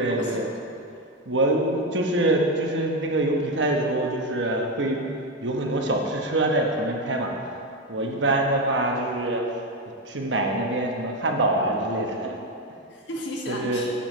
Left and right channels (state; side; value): normal; both; correlation 0.11